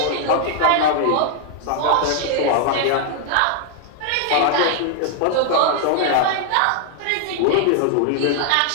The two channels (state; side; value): different; both; correlation 0.00